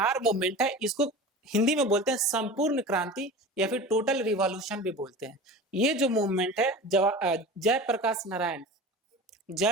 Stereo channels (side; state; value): both; normal; correlation 0.34